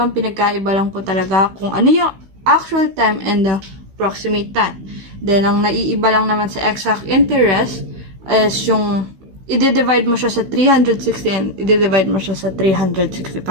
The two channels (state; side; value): late; left; 16 ms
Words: Pinagkaiba lang po talaga kung ano yung actual time and the approximate time. Then, ang naiiba lang naman sa exact interest is yung i-divide mo siya sa 360 and i-divide mo siya sa